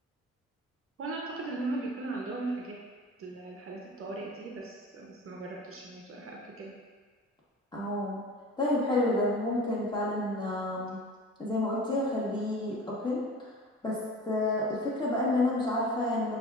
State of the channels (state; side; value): normal; both; correlation 0.39